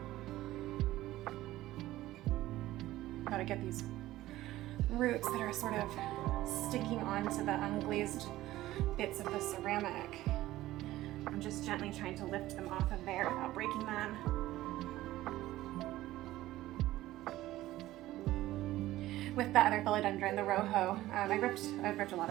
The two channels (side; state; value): left; quieter; 15.8 dB